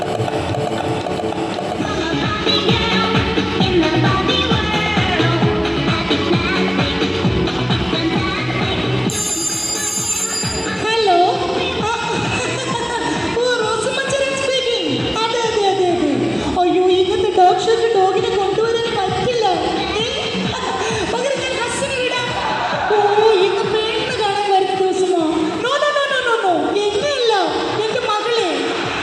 ഹലോ, അയ്യോ, ഇങ്ങനത്തെ ഡോഗ് ഷോക്ക് ഡോഗിനെ കൊണ്ടുവരാൻ പറ്റില്ല. പകരം ഞാൻ ഹസ്സിന് വിടാം. ഓ, ഇന്ന് പെണ്ണ് കാണാൻ വരുന്ന ദിവസമോ? No no no no no no, എന്നെയല്ല, എന്റെ മകളെ.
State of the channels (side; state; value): both; identical; correlation 1.00